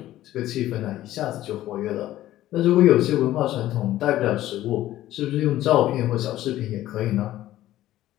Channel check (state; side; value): quieter; right; 14.3 dB